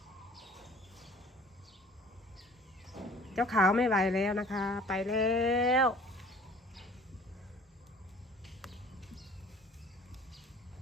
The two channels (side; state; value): both; normal; correlation 0.49